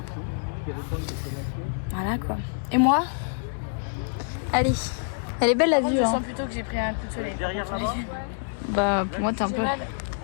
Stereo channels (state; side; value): silent; right; 61 dB below the other